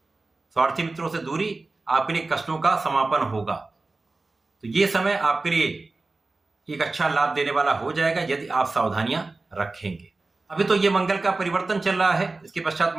स्वार्थी मित्रों से दूरी आपके लिए कष्टों का समापन होगा। तो ये समय आपके लिए एक अच्छा लाभ देने वाला हो जाएगा यदि आप सावधानियां रखेंगे। अभी तो ये मंगल का परिवर्तन चल रहा है, इसके पश्चात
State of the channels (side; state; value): left; quieter; 3.4 dB